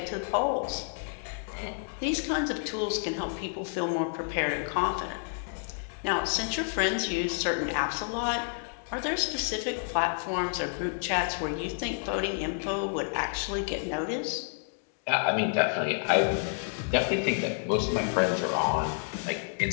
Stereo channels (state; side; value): silent; right; 58 dB below the other